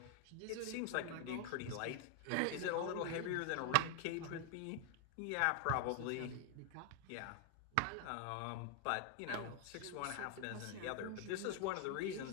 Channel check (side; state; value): both; different; correlation 0.00